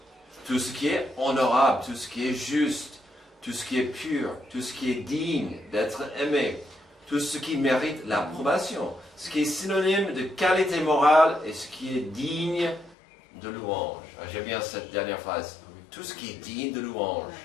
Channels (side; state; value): right; drops out; at 13.0 s